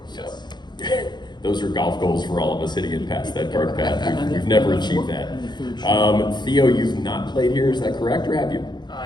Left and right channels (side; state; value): right; late; 0.21 ms